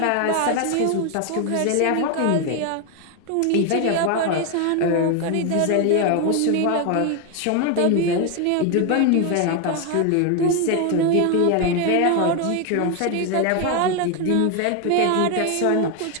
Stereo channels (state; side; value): different; both; correlation 0.01